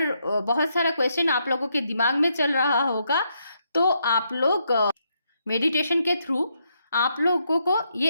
बहुत सारा क्वेश्चन आप लोगों के दिमाग में चल रहा होगा तो आप लोग मेडिटेशन के थ्रू आप लोगों को ये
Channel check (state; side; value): inverted; both; correlation -0.78